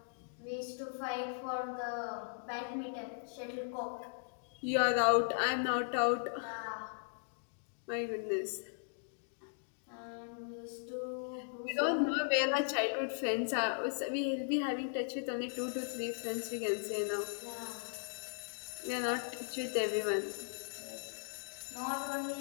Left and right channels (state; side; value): silent; right; digital silence